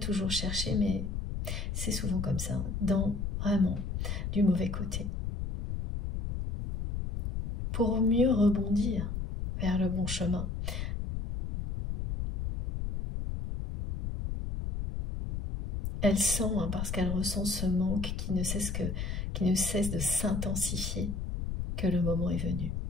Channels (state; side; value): noise; left; rumble, 3 dB below the sound